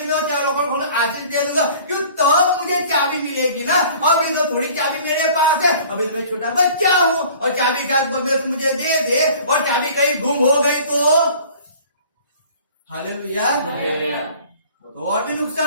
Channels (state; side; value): inverted; both; correlation -0.48